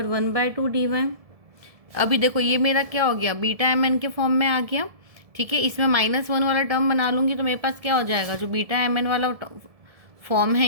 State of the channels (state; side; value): late; left; 1.7 ms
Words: dy। अभी देखो ये मेरा क्या हो गया बीटा एम एन के फॉर्म में आ गया, ठीक है। इसमें -1 वाला टर्म बना लूँगी तो मेरे पास क्या हो जाएगा, जो बीटा एम एन वाला फॉर्म